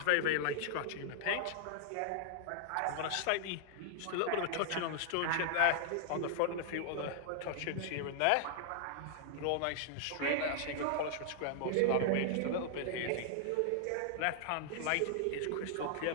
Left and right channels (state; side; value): different; both; correlation 0.00